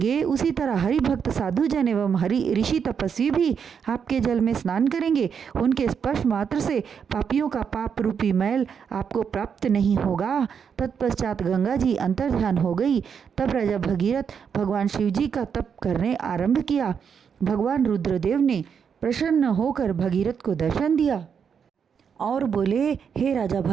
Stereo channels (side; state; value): left; quieter; 7.0 dB